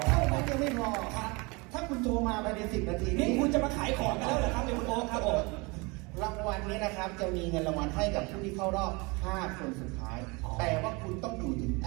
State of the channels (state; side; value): quieter; left; 27.3 dB